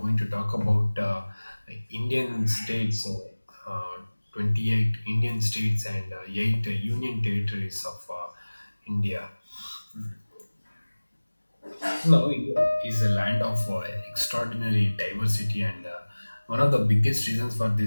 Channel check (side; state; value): both; inverted; correlation -1.00